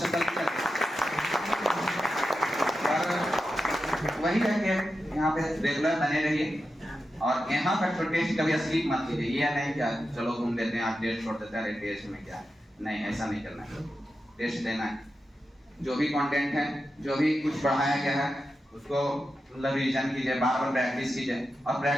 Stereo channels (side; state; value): both; normal; correlation 0.90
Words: कर लिया, पर वही है कि यहाँ पे रेगुलर बने रहिए और यहाँ का जो टेस्ट कभी स्लिप मत कीजिए। ये नहीं क्या चलो घूम लेते हैं, आप टेस्ट छोड़ देते हैं, टेस्ट में क्या है, नहीं, ऐसा नहीं करना है। टेस्ट देना है, जो भी कंटेंट है, जो भी कुछ पढ़ाया गया है उसको मतलब रिवीजन कीजिए, बार बार प्रैक्टिस कीजिए, और